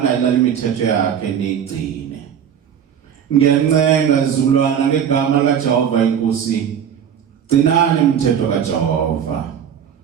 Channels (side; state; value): left; quieter; 8.5 dB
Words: imithetho yakhe nigcine. Ngiyancenga izizukulwana ngegama likaJehova inkosi. Gcinani imithetho kaJehova.